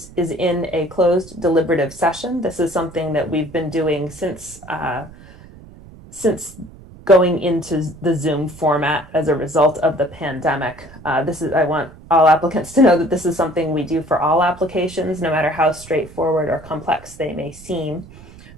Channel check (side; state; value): right; noise; rumble, 20 dB below the sound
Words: is in a closed deliberative session. This is something that we've been doing since going into the Zoom format as a result of the pandemic. I want all applicants to know that this is something we do for all applications, no matter how straightforward or complex they may seem,